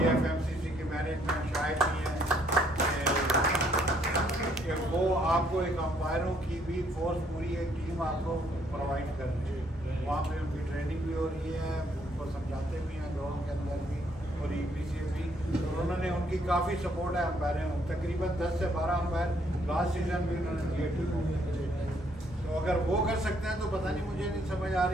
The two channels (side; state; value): both; normal; correlation 0.68